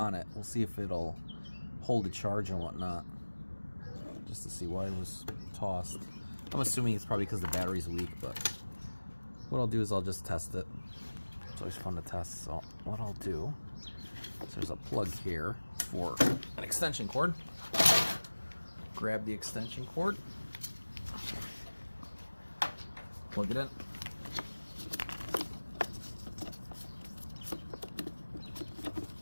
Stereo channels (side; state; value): both; inverted; correlation -1.00